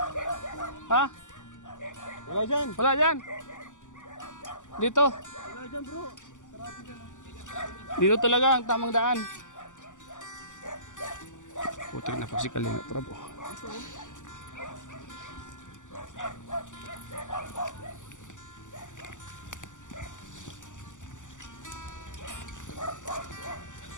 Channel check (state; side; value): late; right; 0.87 ms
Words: Ha? Wala dyan. Wala dyan. Dito. Wala dyan bro. Sarado dyan. Dito talaga ang tamang daan. Putik na po si Kalingap Rab oh.